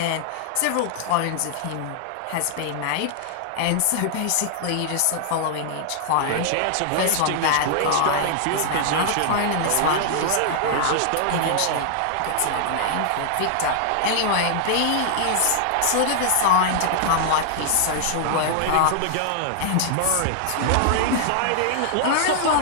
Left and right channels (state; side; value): different; both; correlation -0.01